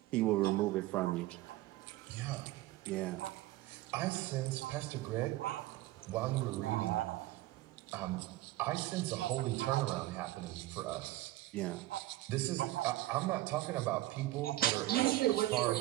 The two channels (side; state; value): left; quieter; 16.5 dB